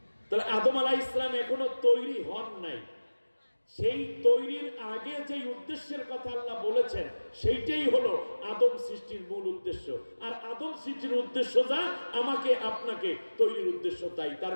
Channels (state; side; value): inverted; both; correlation -1.00